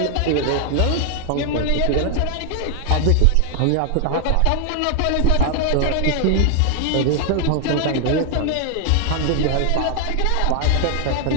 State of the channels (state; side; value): different; both; correlation 0.00